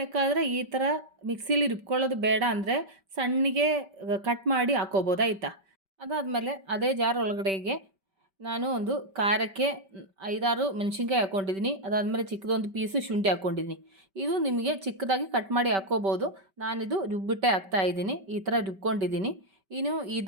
ಈ ಥರ ಮಿಕ್ಸಿಲಿ ರುಬ್ಕೊಳ್ಳೋದು ಬೇಡ ಅಂದರೆ ಸಣ್ಣಗೆ ಕಟ್ ಮಾಡಿ ಹಾಕ್ಕೋಬೋದು, ಆಯಿತಾ. ಅದಾದಮೇಲೆ ಅದೇ ಜಾರ್ ಒಳಗಡೆಗೆ ನಾನು ಒಂದು ಖಾರಕ್ಕೆ 5-6 ಮೆಣಸಿನ್ಕಾಯಿ ಹಾಕ್ಕೊಂಡಿದ್ದೀನಿ. ಅದಾದಮೇಲೆ ಚಿಕ್ಕದೊಂದು ಪೀಸು ಶುಂಠಿ ಹಾಕ್ಕೊಂಡಿದ್ದೀನಿ. ಇದು ನಿಮಗೆ ಚಿಕ್ಕದಾಗಿ ಕಟ್ ಮಾಡಿ ಹಾಕ್ಕೋಬೋದು. ನಾನಿದು ರುಬ್ಬಿಟ್ಟೆ ಹಾಕ್ತಾಯಿದ್ದೀನಿ. ಈ ಥರ ರುಬ್ಕೊಂಡಿದ್ದೀನಿ. ಇನ್ನು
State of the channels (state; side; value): late; left; 5.2 ms